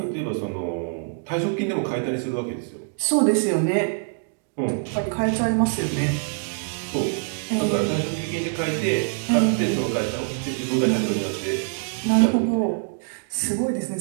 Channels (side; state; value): left; silent; 62 dB below the other